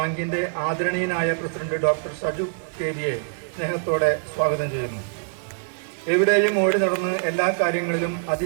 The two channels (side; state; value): left; silent; 63 dB below the other